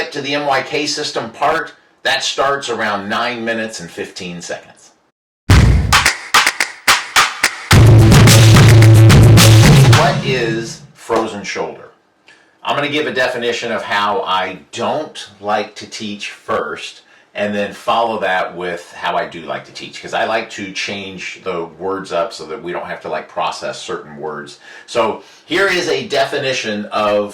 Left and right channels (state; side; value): identical; both; correlation 1.00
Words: to the MYK system part, that starts around 9 minutes and 15 seconds. What is frozen shoulder? I'm going to give a definition of how I don't like to teach first, and then follow that with how I do like to teach, because I like to change the words up so that we don't have to process certain words. So here is a definition of